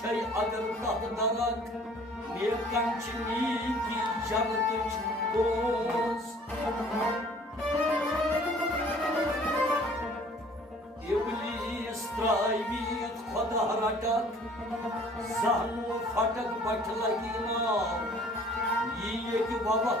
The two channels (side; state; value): both; normal; correlation 0.53